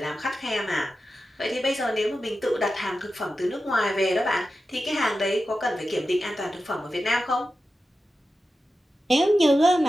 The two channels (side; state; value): both; normal; correlation 0.92